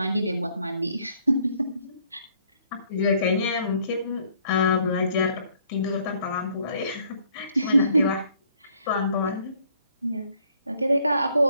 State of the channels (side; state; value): both; inverted; correlation -0.64